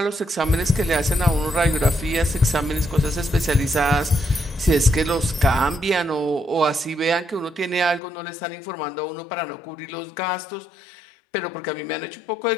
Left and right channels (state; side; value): drops out; right; at 8.0 s